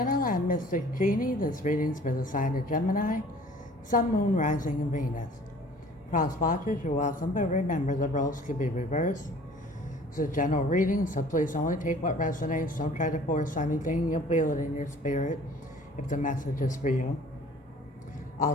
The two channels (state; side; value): normal; both; correlation 0.50